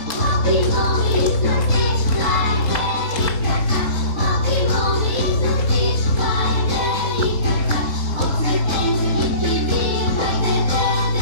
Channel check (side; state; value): right; late; 3.9 ms